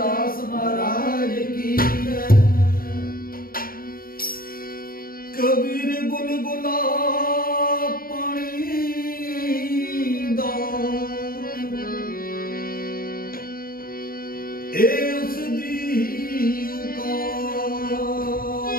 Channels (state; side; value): late; right; 0.42 ms